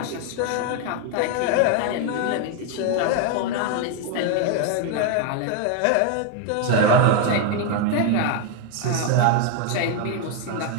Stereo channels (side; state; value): both; different; correlation 0.01